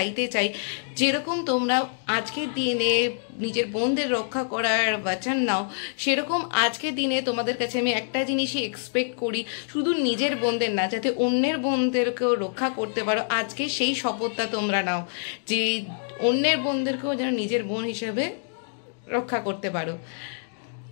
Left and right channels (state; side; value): silent; right; digital silence